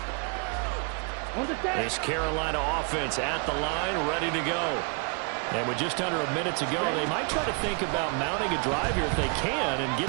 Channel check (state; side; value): quieter; left; 35.5 dB